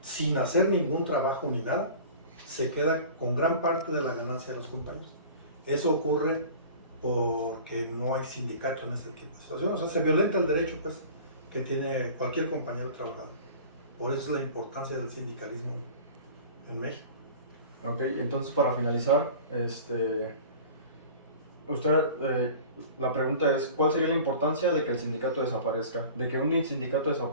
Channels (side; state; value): both; inverted; correlation -0.41